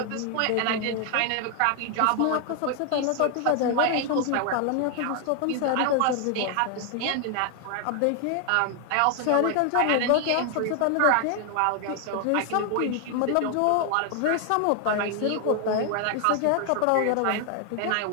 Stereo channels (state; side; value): different; both; correlation 0.00